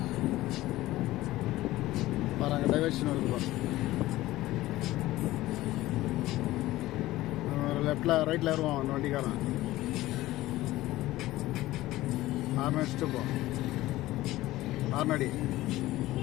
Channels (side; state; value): right; quieter; 16.8 dB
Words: பாருங்க, டைவர்ஷன் வருது. லெஃப்ட்ல ரைட்ல ஏறுவான் அந்த வண்டிக்காரன். ஆறு அடிச்சுட்டு போ. ஆறுநடி